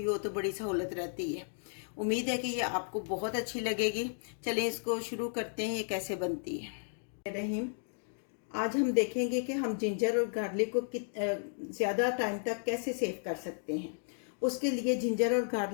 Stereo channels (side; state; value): right; silent; digital silence